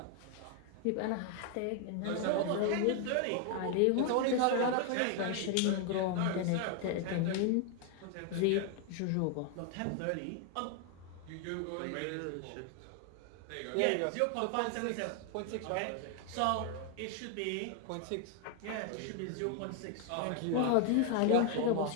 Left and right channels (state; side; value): different; both; correlation 0.00